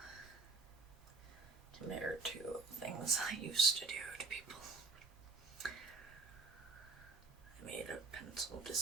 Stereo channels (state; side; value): quieter; left; 3.8 dB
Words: compared to things I used to do to people. I made a pencil